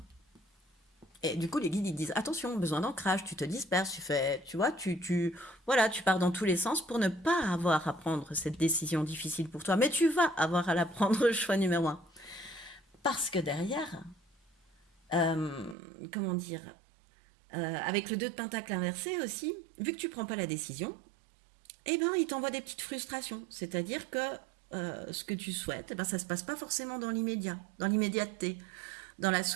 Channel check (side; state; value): left; drops out; at 15.8 s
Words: Et du coup, les guides, ils disent, attention, besoin d'ancrage, tu te disperses, tu vois, voilà, tu pars dans tous les sens pour ne pas avoir à prendre cette décision difficile pour toi. Mais tu vas avoir à la prendre, choix numéro un. Parce que derrière, comment dire, avec le 2 de pentacle inversé aussi, vu que tu prends pas la décision, eh ben, il t'envoie des petites frustrations. C'est-à-dire que ce que tu souhaites, eh ben, ça se passe pas forcément dans l'immédiat, dans l'immédiateté, dans la